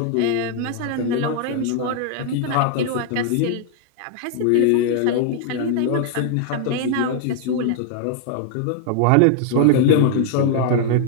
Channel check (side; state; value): both; different; correlation 0.00